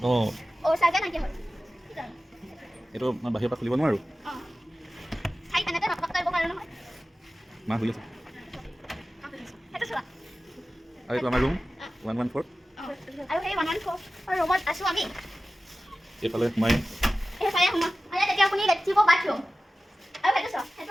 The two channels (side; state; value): both; normal; correlation 0.95